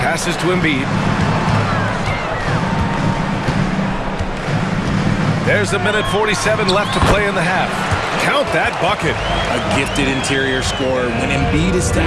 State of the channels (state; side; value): identical; both; correlation 1.00